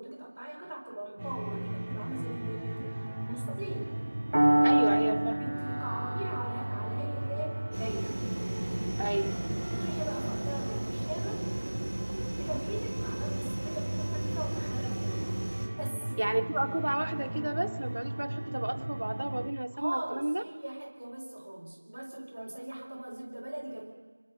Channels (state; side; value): inverted; both; correlation -1.00